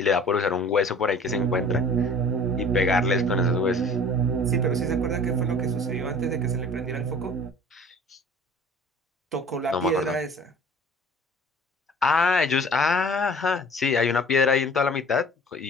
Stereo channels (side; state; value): both; normal; correlation 0.46